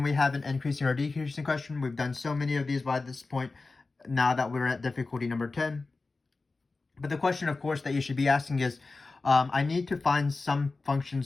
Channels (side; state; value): right; quieter; 3.7 dB